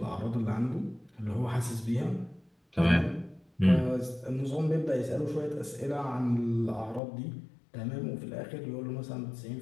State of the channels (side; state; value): right; drops out; at 7.0 s